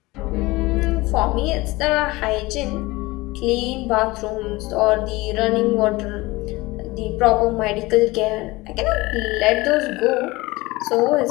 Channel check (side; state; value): right; quieter; 21.3 dB